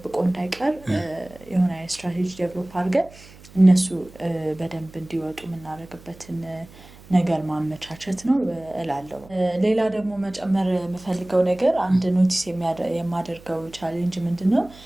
እንዳይቀር የሆነ ስትራቴጂ ዴቨሎፕ አድርገን እነሱ በደንብ እንዲወጡ የምናደርግበትን ነገር ማመቻቸት ነው እላለሁ። ሌላ ደግሞ መጨመር የምፈልገው ነገር አንድ ኖቲስ የማደርገው ቻሌንጅ ምንድነው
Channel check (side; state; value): right; noise; hum, 22 dB below the sound